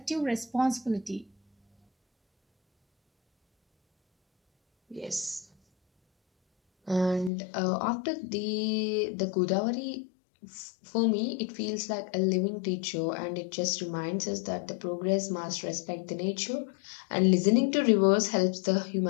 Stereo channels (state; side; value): drops out; right; at 7.3 s